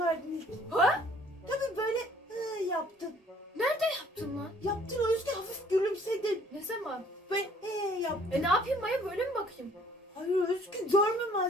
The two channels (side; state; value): both; normal; correlation 0.58